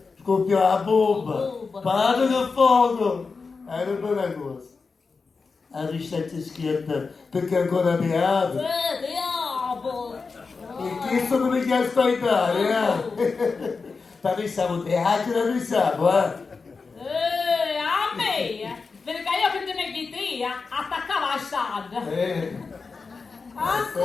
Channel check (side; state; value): right; quieter; 4.6 dB